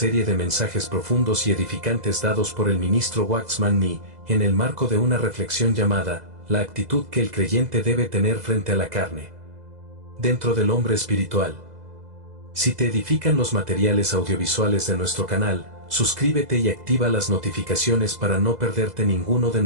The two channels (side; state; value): left; late; 2.0 ms